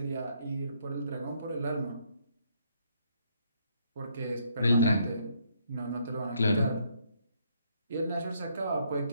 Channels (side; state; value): both; inverted; correlation -0.71